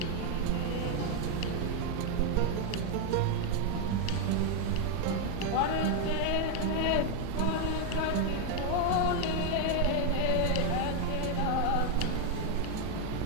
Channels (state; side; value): different; both; correlation 0.01